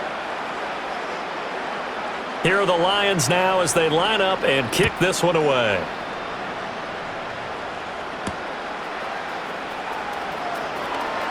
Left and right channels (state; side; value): identical; both; correlation 1.00